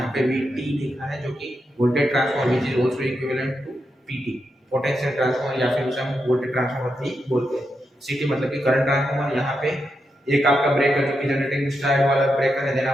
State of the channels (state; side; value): normal; both; correlation 0.85